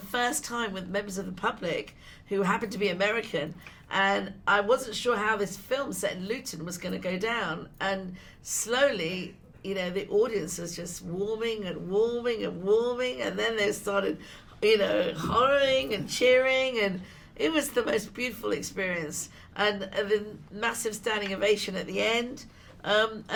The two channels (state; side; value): identical; both; correlation 1.00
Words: time with members of the public who happened to be American, and I wasn't sure how this film set in Luton was going to go down. And slowly, you know, the audience was just warming and warming and warming, and then they started, you know, hollering and cheering, and it was the most beautiful experience. And the massive standing ovation at the end. And